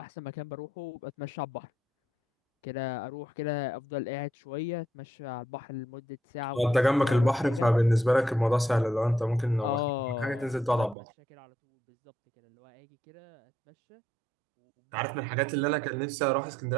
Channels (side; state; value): left; drops out; at 11.0 s